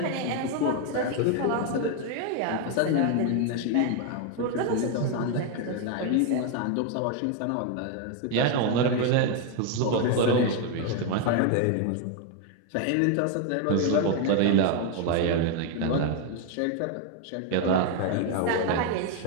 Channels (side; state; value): both; different; correlation 0.01